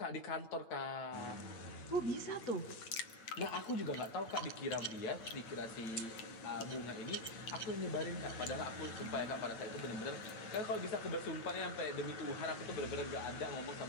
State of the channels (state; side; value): late; right; 8.7 ms